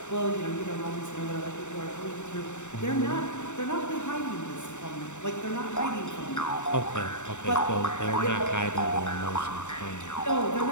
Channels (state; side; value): late; right; 0.84 ms